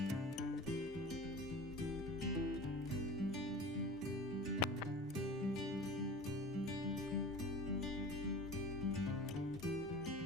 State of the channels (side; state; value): both; normal; correlation 0.38